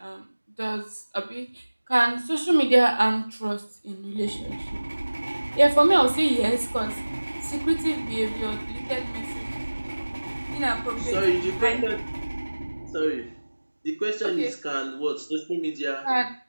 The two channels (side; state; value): both; inverted; correlation -1.00